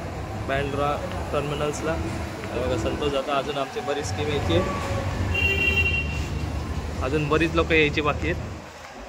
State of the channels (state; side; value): identical; both; correlation 1.00